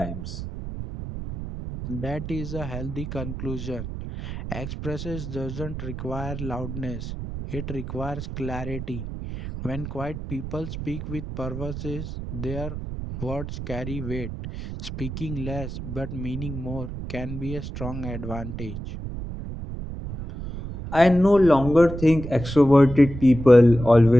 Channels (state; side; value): noise; right; rumble, 8 dB below the sound